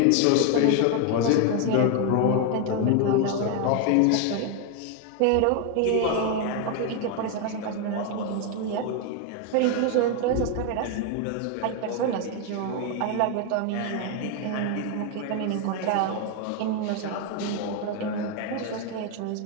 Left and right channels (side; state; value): both; different; correlation 0.01